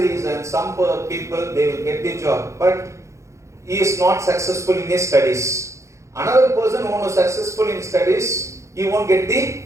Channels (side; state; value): left; late; 0.14 ms